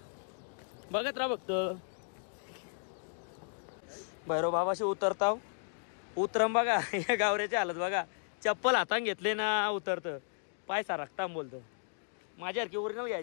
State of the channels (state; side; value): silent; right; digital silence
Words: बघत राहा फक्त. भैरव बाबाशी उतरताव. उतरम बघा. या गावऱ्याची हालत बघा. चप्पल हातान घेतले ना उतरतं. पाय सारखता बोलतो. माझ्यासारखी ओरिजिनल